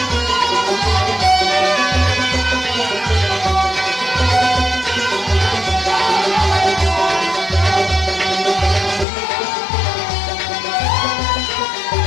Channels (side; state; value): right; drops out; at 9.1 s